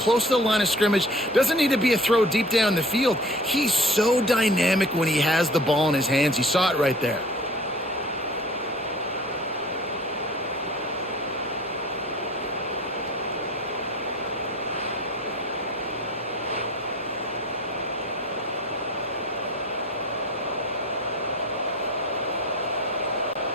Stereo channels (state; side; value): normal; both; correlation 0.44